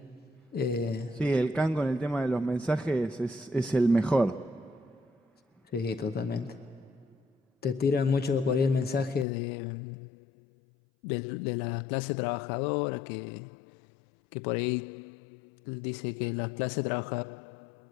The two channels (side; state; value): right; drops out; at 9.2 s